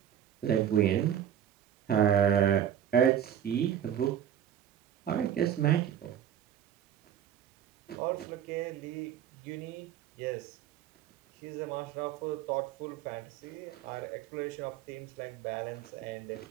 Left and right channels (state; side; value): quieter; left; 10.0 dB